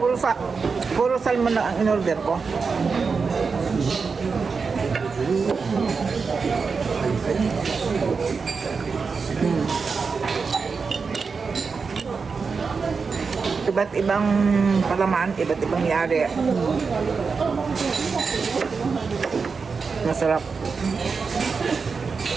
puro salmon na ang in-order ko. Iba't ibang palaman, iba't ibang yari. Masarap.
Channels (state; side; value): quieter; left; 5.0 dB